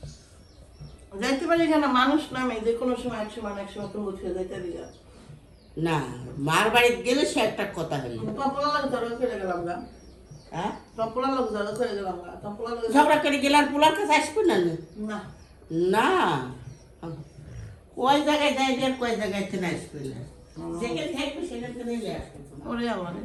যাইতে পারি কেন মানুষ নামে যে কোনো সময় এক সময় তুমি বলছে যাইতে দিলা না মার বাড়িতে গেলে সে একটা কথা হইল টপলা লোক ধরো করে গেলাম গা হ্যাঁ টপলা লোক ধরো করে গেলাম গা টপলা লোক ঝগড়া করে গেলে আর পোলার কাছে আসবে না না না কয় জায়গায় যাই আর কয় জায়গায় থেকে আসবে না যেখানে থাকবে সেখান থেকে নিয়ে আসবে ওরে আমার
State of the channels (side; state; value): both; identical; correlation 1.00